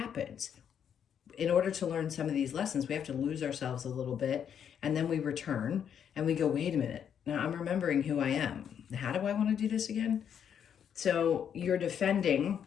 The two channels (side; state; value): right; quieter; 8.4 dB